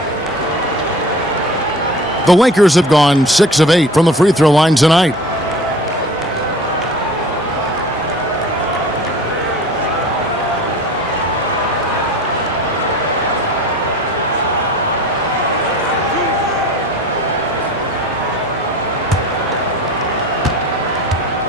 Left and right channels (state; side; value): normal; both; correlation 0.41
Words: The Lakers have gone 6 of 8 from the free throw line tonight.